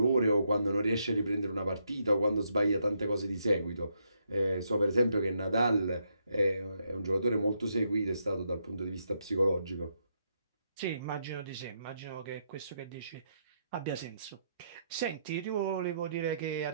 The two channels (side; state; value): both; inverted; correlation -0.78